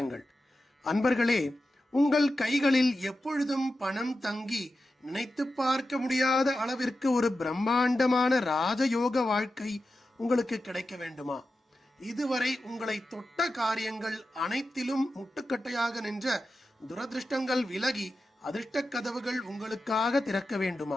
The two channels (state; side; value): normal; both; correlation 0.92